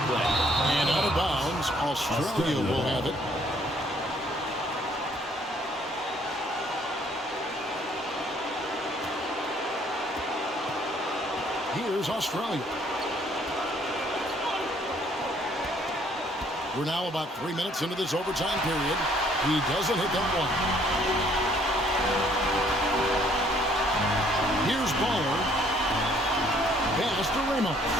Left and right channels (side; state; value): both; normal; correlation 0.63